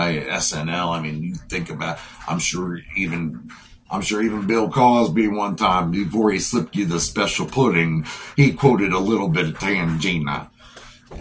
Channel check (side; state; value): both; identical; correlation 1.00